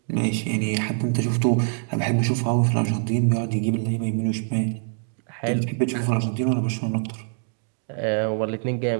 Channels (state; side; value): silent; left; 57 dB below the other